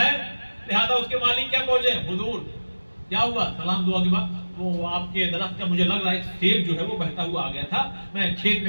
लिहाजा उसके मालिक क्या पहुंचे, हुजूर क्या हुआ, सलाम दुआ के बाद वो आपके दरख्त का मुझे लग रहा है सेब जो है वो बहता हुआ आ गया था, मैं खेत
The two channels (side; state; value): both; inverted; correlation -1.00